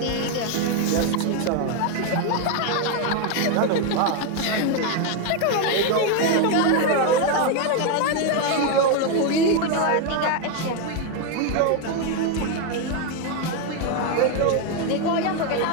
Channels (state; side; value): different; both; correlation 0.01